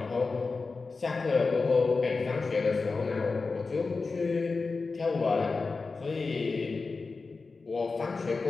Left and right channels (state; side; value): quieter; right; 4.2 dB